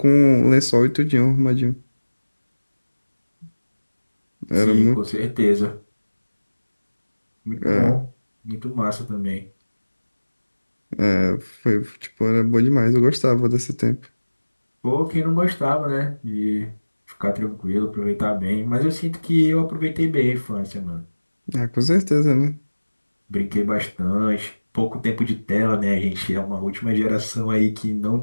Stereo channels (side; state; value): both; inverted; correlation -1.00